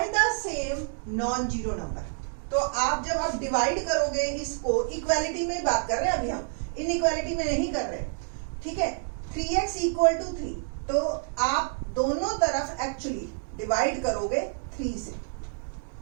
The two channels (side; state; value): left; silent; digital silence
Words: the same non-zero number. तो आप जब आप डिवाइड करोगे इसको, इक्वालिटी में बात कर रहे हैं अभी हम, इनइक्वालिटी में नहीं कर रहे. ठीक है, 3x = 3, तो आप दोनों तरफ एक्चुअली डिवाइड करोगे 3 से.